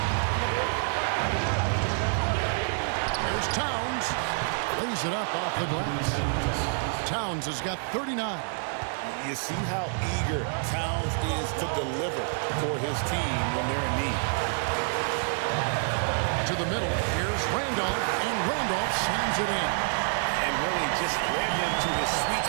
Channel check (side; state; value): left; silent; 59 dB below the other